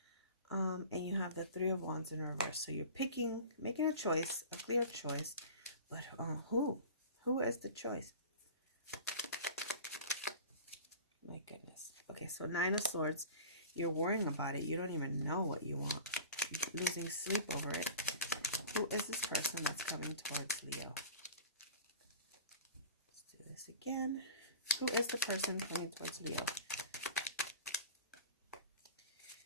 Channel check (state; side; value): inverted; both; correlation -0.38